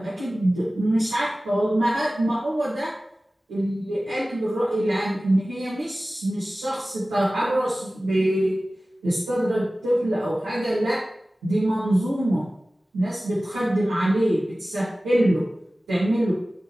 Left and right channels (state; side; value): normal; both; correlation 0.97